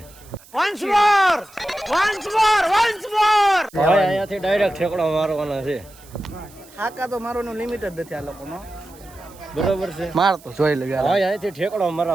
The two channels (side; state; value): right; noise; hiss, 24 dB below the sound